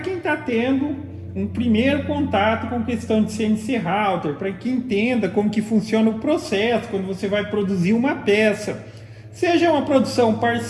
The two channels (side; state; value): both; identical; correlation 1.00